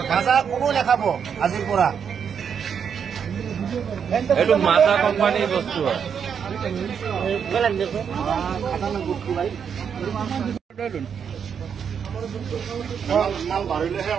কোনো নাখাব আজিৰ পৰা এইটো মাজা কোম্পানীৰ বস্তু হয়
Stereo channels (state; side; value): quieter; left; 7.3 dB